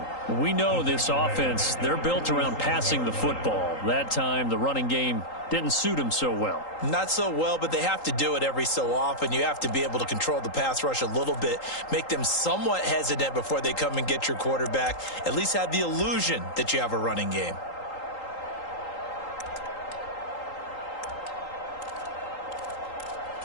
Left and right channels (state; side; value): late; right; 3.8 ms